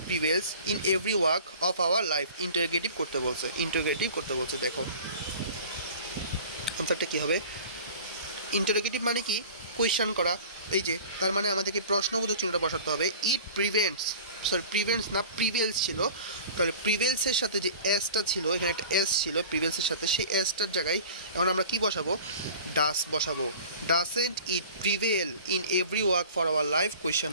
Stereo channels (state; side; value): inverted; both; correlation -0.42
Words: prevails in every walk of our life. Interrogative করতে বলছে, ইন্টারোগেটিভ করতে বলছে। দেখো আনসারটা কী হবে? ইন্টারোগেটিভ মানে কি? কোয়েশ্চেন করা। এই যে তার মানে আমাদেরকে প্রশ্নবোধক চিহ্নটা বসাতে হবে। ইট প্রিভেন্টস না প্রিভেলস ছিল, তাহলে প্রিভেলসের সাথে যে এসটা ছিল, এখানে একটা এস ছিল প্রিভেলসের সাথে, সেই এসটার জায়গায় এখন আমরা কি বসাবো? ডাস বসাবো। Doesn't it prevail in every walk for our life